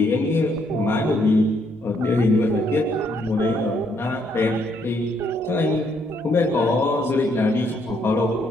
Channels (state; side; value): normal; both; correlation 0.71